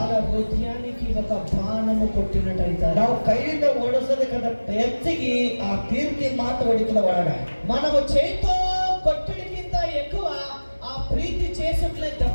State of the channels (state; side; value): inverted; both; correlation -1.00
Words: హృదయానికి ఒక బాణము కొట్టినట్టయితే, ನಾವು ಕೈಯಿಂದ ಓಡಿಸೋದಕ್ಕಂತ ಹೆಚ್ಚಿಗೆ ಆ ಕೀರ್ತಿ ಮಾತು ಹೊಡಿತದ ಒಳಗ. మనము చేతితో కొట్టడికింత ఎక్కువ ఆ ప్రీతి చేసిట్లే